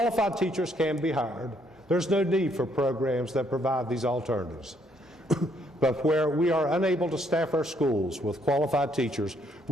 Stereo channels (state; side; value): normal; both; correlation 0.70